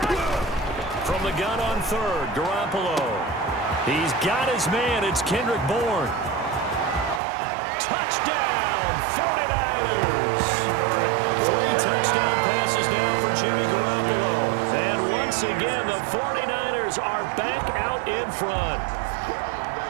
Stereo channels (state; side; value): drops out; left; at 7.2 s